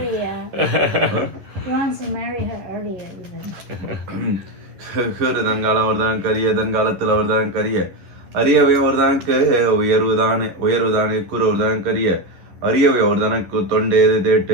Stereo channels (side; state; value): left; late; 11 ms